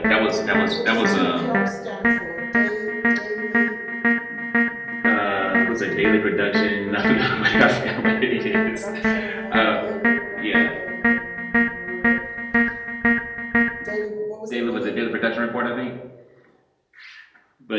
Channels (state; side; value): identical; both; correlation 1.00